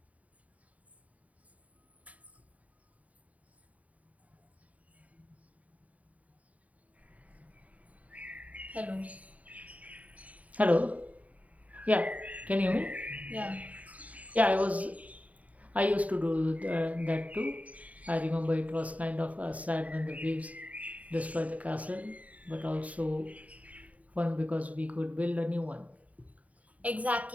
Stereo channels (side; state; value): left; late; 0.070 ms